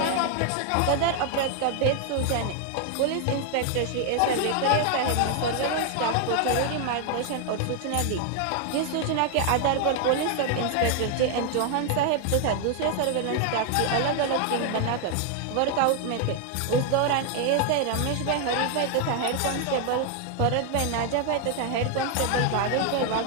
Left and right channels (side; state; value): both; different; correlation 0.00